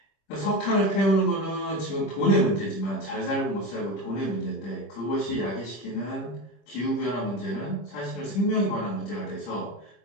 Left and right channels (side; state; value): right; late; 25 ms